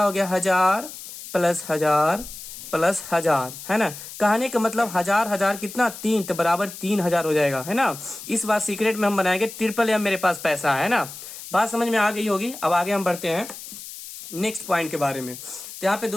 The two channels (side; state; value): left; noise; hiss, 13 dB below the sound